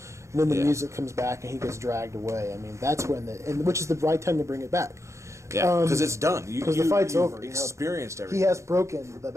and then the Yeah. music comes back and he gets dragged away. I mean, that's when which is the right time to bring it back. Yeah, because it's done. Because the fight's you've over. Experienced everything. He has broken the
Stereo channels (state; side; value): late; left; 0.14 ms